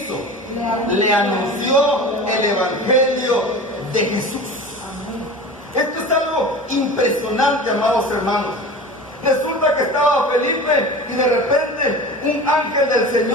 Le anunció el Evangelio de Jesús. Esto es algo impresionante, amados hermanos. Resulta que estaba Felipe y de repente un ángel del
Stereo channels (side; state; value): both; normal; correlation 0.34